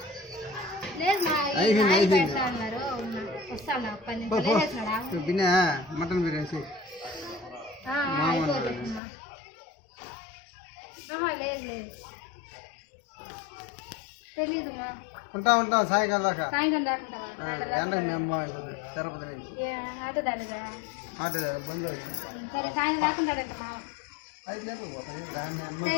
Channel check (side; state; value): right; drops out; at 9.0 s